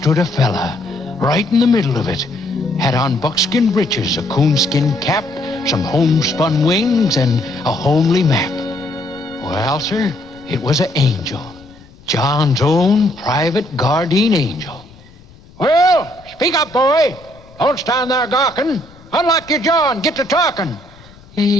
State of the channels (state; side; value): noise; left; rumble, 24 dB below the sound